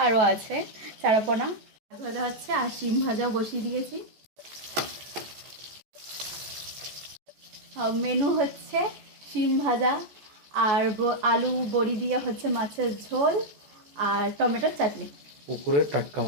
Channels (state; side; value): late; left; 14 ms